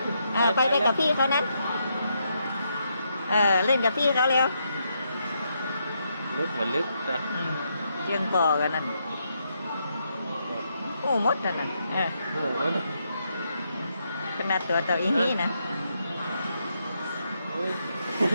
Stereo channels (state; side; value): inverted; both; correlation -0.80